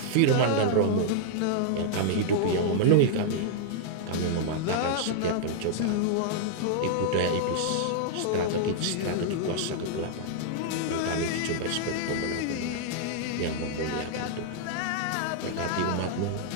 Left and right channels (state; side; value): different; both; correlation -0.01